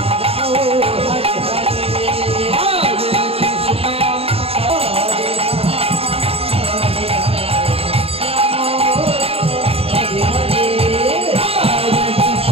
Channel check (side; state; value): left; late; 0.28 ms